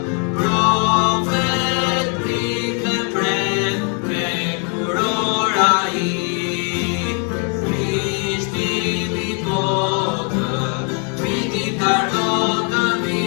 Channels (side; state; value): right; quieter; 39.6 dB